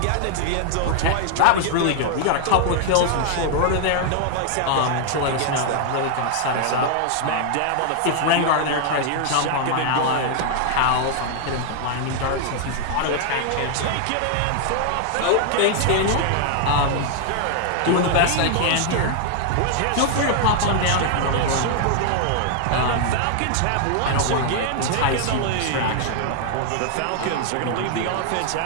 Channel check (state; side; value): different; both; correlation 0.00